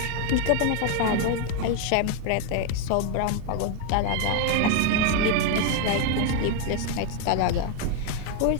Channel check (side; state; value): both; different; correlation 0.01